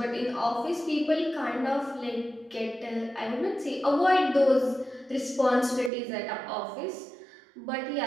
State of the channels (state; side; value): drops out; left; at 5.9 s